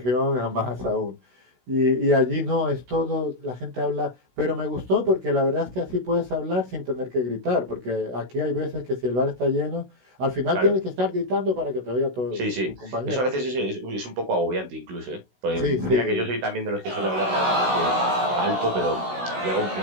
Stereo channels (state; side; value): late; left; 16 ms